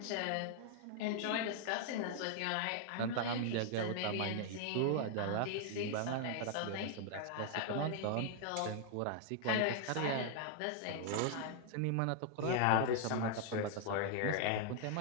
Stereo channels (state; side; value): different; both; correlation 0.00